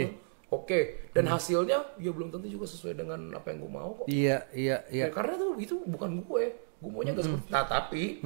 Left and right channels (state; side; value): silent; left; digital silence